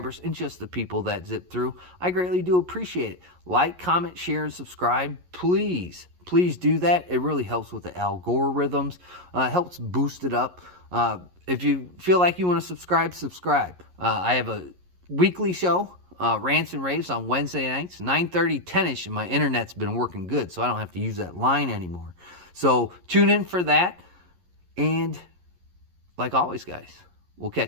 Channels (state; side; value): late; left; 11 ms